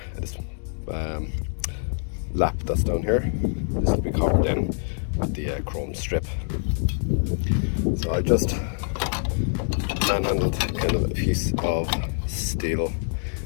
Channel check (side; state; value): right; silent; 62 dB below the other